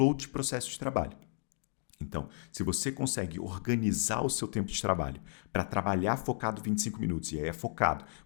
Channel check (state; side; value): silent; right; digital silence